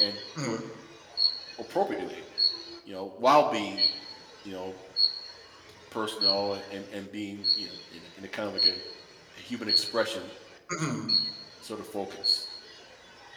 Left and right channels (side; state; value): both; identical; correlation 1.00